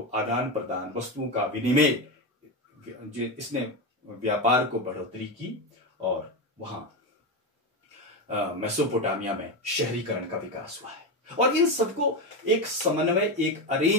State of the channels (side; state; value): both; normal; correlation 0.14